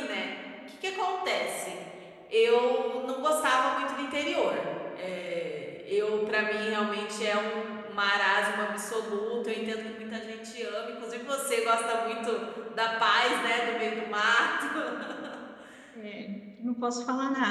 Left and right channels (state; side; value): identical; both; correlation 1.00